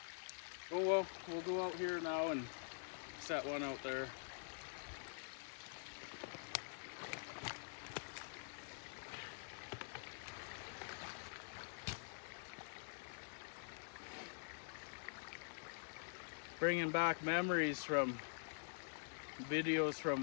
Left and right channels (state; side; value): silent; right; digital silence